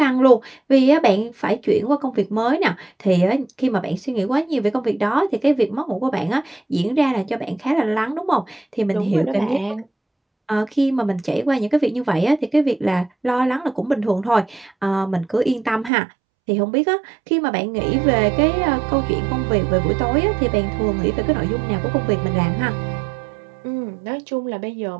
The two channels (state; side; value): drops out; left; at 15.9 s